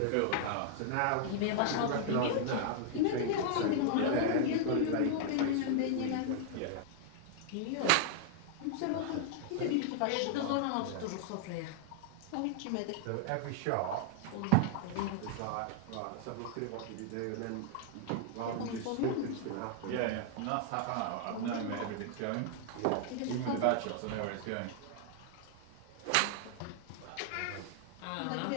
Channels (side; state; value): both; different; correlation 0.00